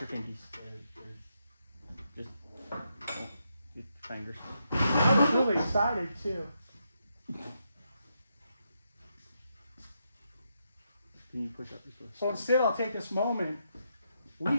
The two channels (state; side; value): inverted; both; correlation -0.81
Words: Just keep your fingers. I was really excited too. Can you push up this way? So instead, I'll take this moment. We